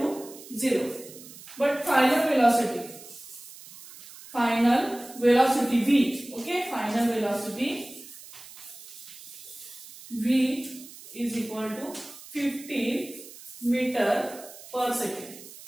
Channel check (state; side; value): noise; right; hiss, 17 dB below the sound